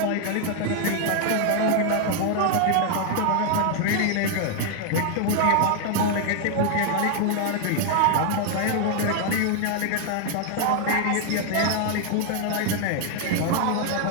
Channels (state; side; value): different; both; correlation 0.00